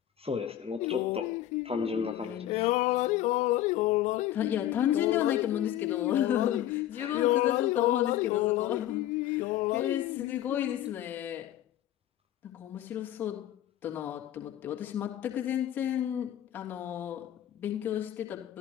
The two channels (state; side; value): quieter; right; 12.3 dB